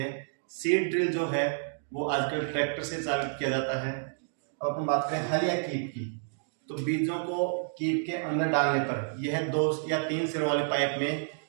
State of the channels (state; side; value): silent; left; digital silence